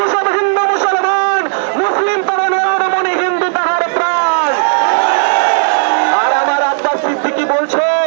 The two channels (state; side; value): silent; left; digital silence